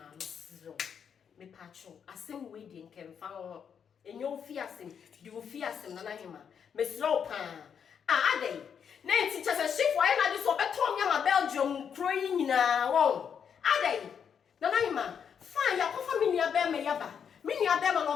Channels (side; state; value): right; quieter; 7.5 dB